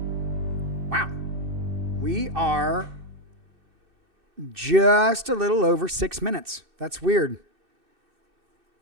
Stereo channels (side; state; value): left; late; 2.6 ms